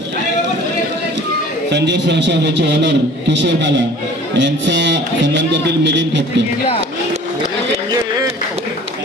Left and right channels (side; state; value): both; normal; correlation 0.47